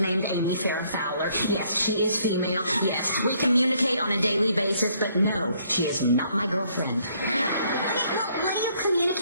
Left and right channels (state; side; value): inverted; both; correlation -0.66